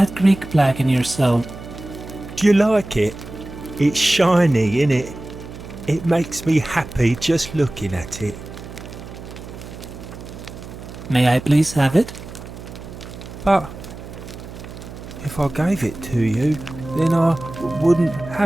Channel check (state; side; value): noise; right; hum, 13 dB below the sound